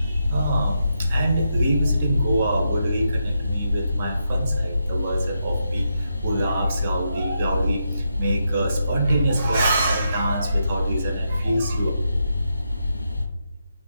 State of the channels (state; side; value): inverted; both; correlation -0.83